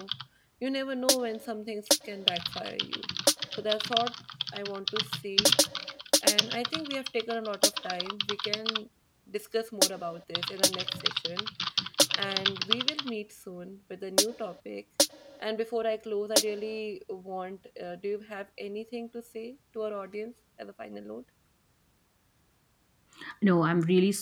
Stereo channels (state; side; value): identical; both; correlation 1.00